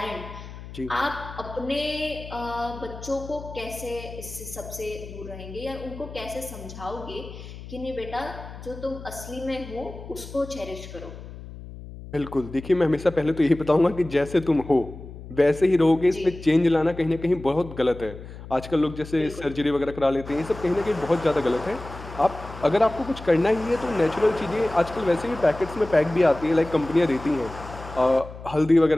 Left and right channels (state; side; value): noise; left; hum, 14 dB below the sound